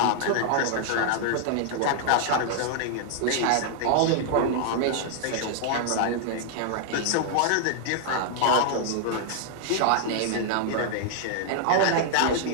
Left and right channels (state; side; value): different; both; correlation 0.00